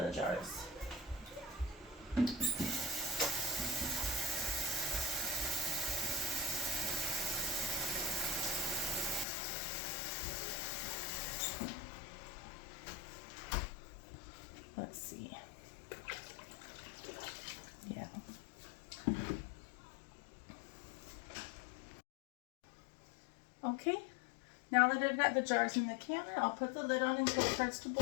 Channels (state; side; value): drops out; right; at 9.2 s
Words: the jars. Let's see. Yeah. Okay, now that I've got the jars in the canner, I'll put the lid on until it starts to